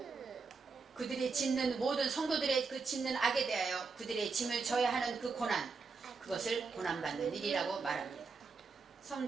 그들이 짓는 모든 성도들의 그 짓는 악에 대하여 그들의 짐을 져야 하는 그 고난, 그것을 고난받는 일이라고 말합니다.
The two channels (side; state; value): left; quieter; 4.7 dB